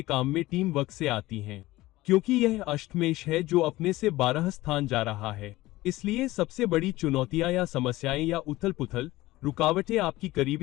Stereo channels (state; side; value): quieter; right; 18.1 dB